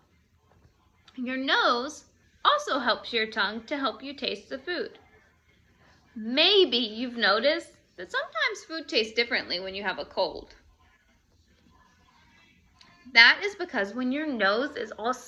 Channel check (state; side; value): identical; both; correlation 1.00